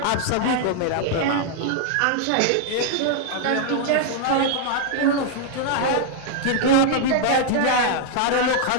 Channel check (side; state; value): both; different; correlation 0.00